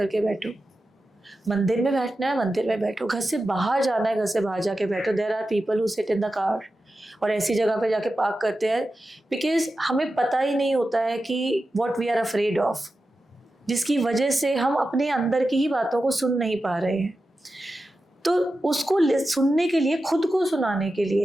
बैठो. मंदिर में बैठना है, मंदिर में बैठो. घर से बाहर जाना है, घर से बाहर जाके बैठो. There are people who sit in the car और ऐसी जगह पे जाके पार्क करते हैं, बिकॉज हमें पता ही नहीं होता है कि what we are afraid of, जिसकी वजह से हम अपने अंदर की ही बातों को सुन नहीं पा रहे हैं. तो उसको सुनने के लिए, खुद को सुनाने के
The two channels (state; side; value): normal; both; correlation 0.92